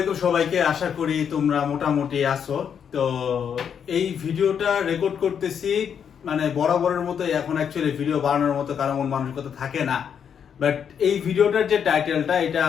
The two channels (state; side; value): quieter; right; 7.8 dB